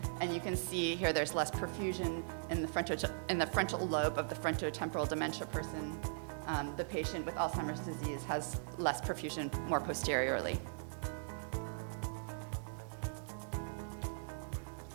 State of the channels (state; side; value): silent; left; digital silence